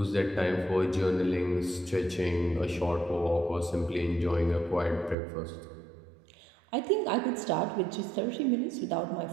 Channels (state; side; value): drops out; left; at 5.2 s